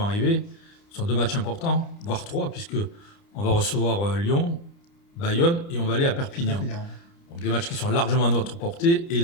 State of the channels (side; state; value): right; late; 29 ms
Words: arriver sont 2 matchs importants, voire 3, puisque on va recevoir Lyon, Bayonne et on va aller à Perpignan. Donc des matchs qui sont largement à notre portée et